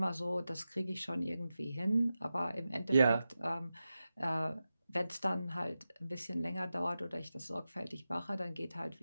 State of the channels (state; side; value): inverted; both; correlation -0.93